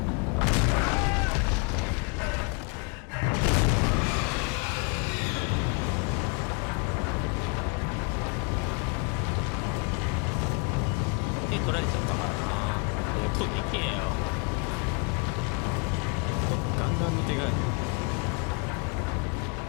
手取られちゃったからな。音でけえよ。ガンガンの手がなん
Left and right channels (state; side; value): quieter; right; 31.5 dB